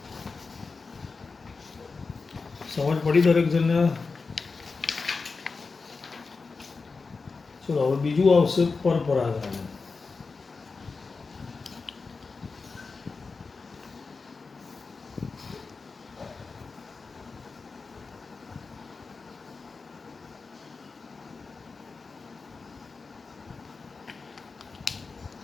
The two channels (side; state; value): right; quieter; 4.4 dB